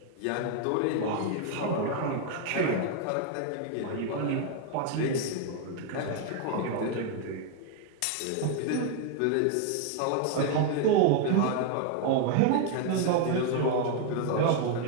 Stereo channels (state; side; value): different; both; correlation 0.00